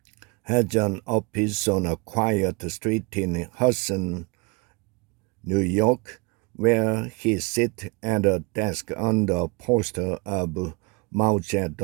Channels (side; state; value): left; quieter; 29.2 dB